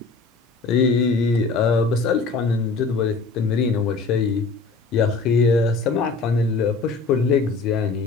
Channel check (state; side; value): quieter; right; 4.2 dB